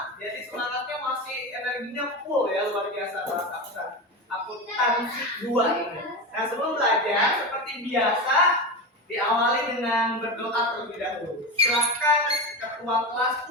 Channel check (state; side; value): normal; both; correlation 0.21